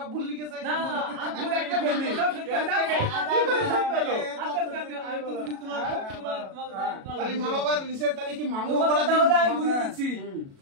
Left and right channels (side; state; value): left; late; 37 ms